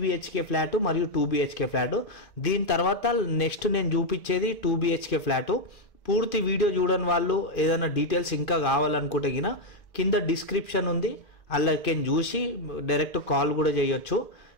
ఫ్లాట్ మరియు 2BHK ఫ్లాట్. దీని తర్వాత నెక్స్ట్ నేను చూపించేది 2BHK ఫ్లాట్. పూర్తి వీడియో చూడని వాళ్ళు ఏదైనా డీటెయిల్స్ ఇంకా కావాలనుకుంటే కింద డిస్క్రిప్షన్ ఉంది, అలాగే చూసి డైరెక్ట్ కాల్ కూడా చేయొచ్చు.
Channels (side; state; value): right; late; 2.4 ms